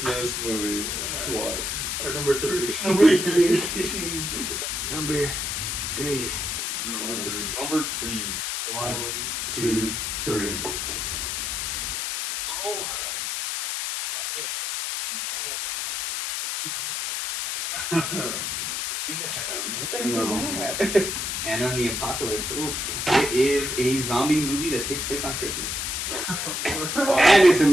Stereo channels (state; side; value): noise; left; hiss, 2 dB below the sound